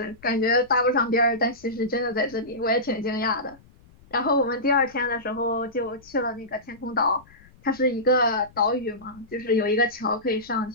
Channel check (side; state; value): left; noise; rumble, 26 dB below the sound